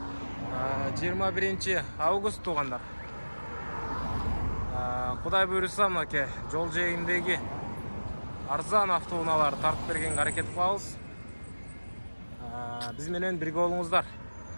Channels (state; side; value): inverted; both; correlation -1.00